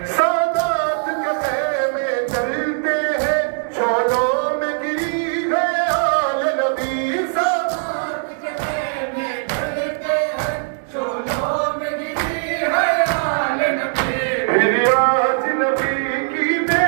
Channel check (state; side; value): silent; left; digital silence